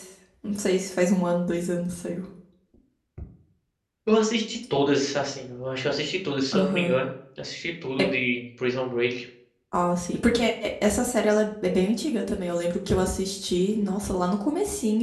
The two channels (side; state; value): both; identical; correlation 1.00